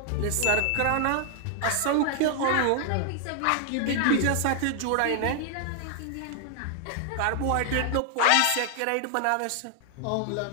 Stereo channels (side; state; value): both; different; correlation 0.00